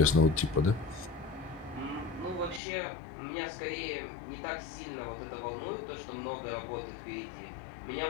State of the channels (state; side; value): drops out; right; at 2.6 s